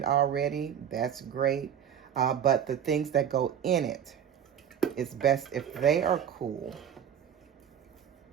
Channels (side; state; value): left; quieter; 8.9 dB